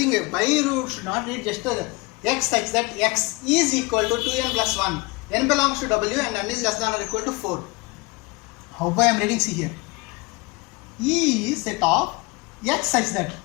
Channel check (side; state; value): right; quieter; 24.6 dB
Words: a by root should not read just a x such that x is equal to 2n plus 1. N belongs to w and n is less than or equal to 4. How I am reading, see here. E is set of x such that.